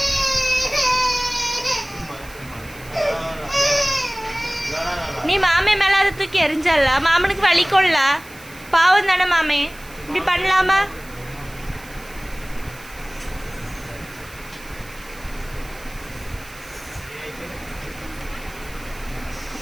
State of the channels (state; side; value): noise; right; hiss, 20 dB below the sound